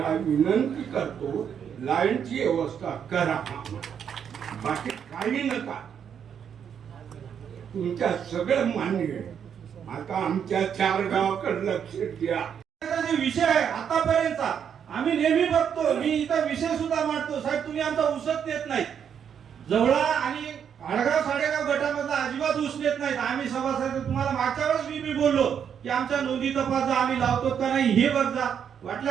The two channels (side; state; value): left; quieter; 8.0 dB